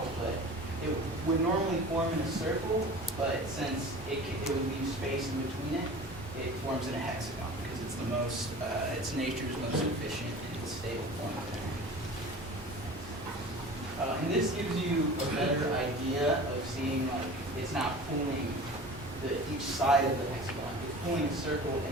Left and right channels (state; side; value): normal; both; correlation 0.39